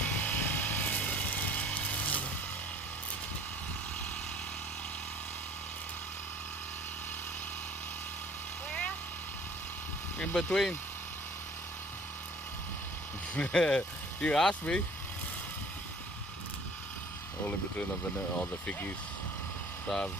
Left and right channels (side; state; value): both; normal; correlation 0.50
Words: In between. You asked me. All in between all the figgies. So